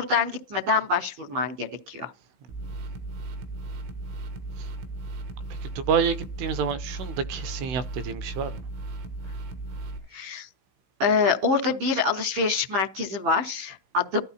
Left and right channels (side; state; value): left; late; 16 ms